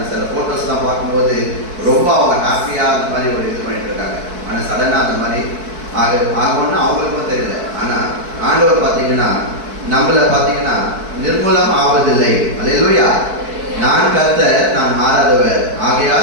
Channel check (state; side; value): late; left; 4.6 ms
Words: சில ஃபோட்டோஸ்லாம் பார்க்கும்போது ரொம்ப அவங்க ஹாப்பியாக அந்த மாதிரி ஒரு இது பண்ணிட்டு இருக்காங்க. ஆனால் சடனாக அந்த மாதிரி ஆகும்னா அவங்களுக்கும் தெரியல. ஆனால் ஆண்டவர் பார்த்தீங்கன்னா நம்மளை பார்த்தீங்கன்னா நிர்மூலம் ஆவதில்லை. அல்லேலூயா. நான் கர்த்தர், நான் மாறாதவர்,